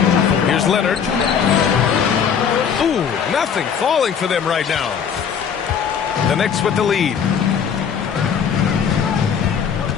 Here's Leonard. Ooh, nothing falling for them right now. The Knicks with the lead.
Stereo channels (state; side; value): quieter; right; 7.3 dB